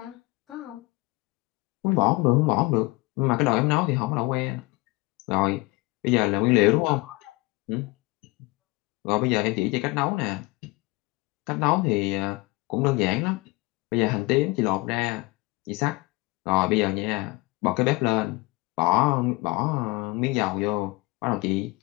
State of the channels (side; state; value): right; quieter; 22.7 dB